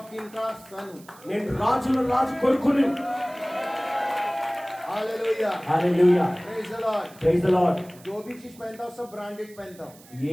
किंग का सन हूँ. నేను రాజుల రాజు కొడుకుని. Hallelujah. Hallelujah. Praise the Lord. Praise the Lord. जो भी चीज पहनता हूँ सब ब्रांडेड पहनता हूँ.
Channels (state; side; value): noise; right; hiss, 24 dB below the sound